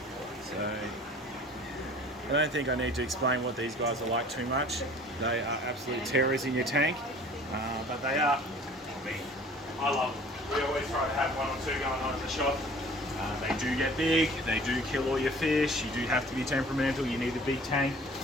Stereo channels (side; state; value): both; normal; correlation 0.48